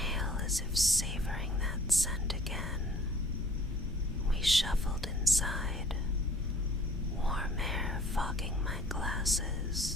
as if savoring that scent again. We shuffled inside, warm air fogging my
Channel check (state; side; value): normal; both; correlation 0.53